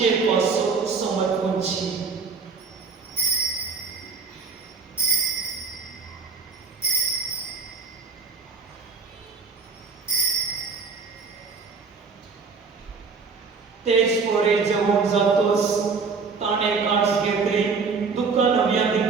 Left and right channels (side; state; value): left; quieter; 5.0 dB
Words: पासो समर्पणची. तेच पोरे जेवण जातोच ताणें कांस घेतली, दुखां नव्या